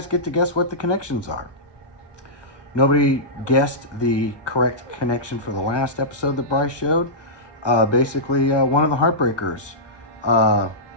get to guess what the connections are. Nobody guessed the correct connection for the last episode that Bryce showed. Basically, one of the Heartbreakers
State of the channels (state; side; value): late; right; 1.2 ms